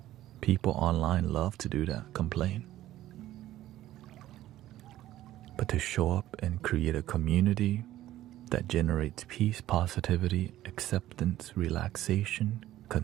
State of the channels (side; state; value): left; quieter; 14.2 dB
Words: People online love to do that, complain. But to show up and create a community that generates peace, positivity, acceptance, relaxation,